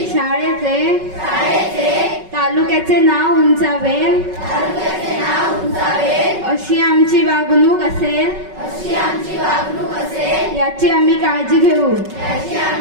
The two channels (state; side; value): late; left; 5.3 ms